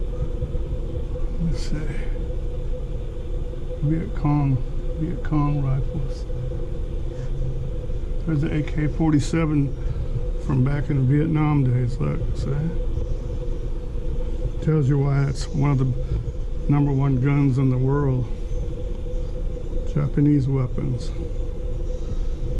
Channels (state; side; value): identical; both; correlation 1.00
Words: Let's see. Viet Cong rifles. There's the AK-47 from back in the Vietnam days, look, see? Tells you why it's one of the #1 guns in the world. Japanese weapons.